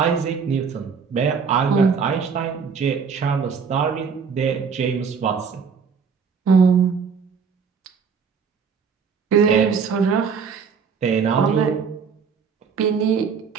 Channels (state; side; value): quieter; left; 6.0 dB